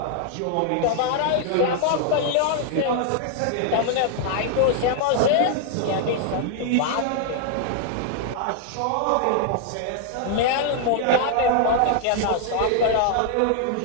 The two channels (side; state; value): both; different; correlation 0.00